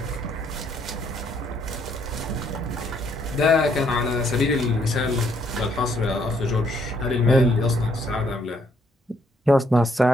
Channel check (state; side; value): normal; both; correlation 0.69